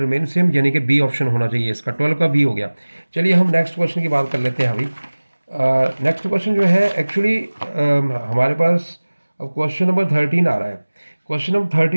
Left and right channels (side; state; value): both; inverted; correlation -1.00